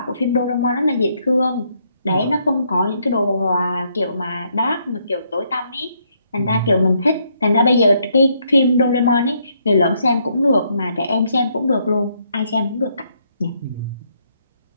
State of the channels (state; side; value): inverted; both; correlation -0.73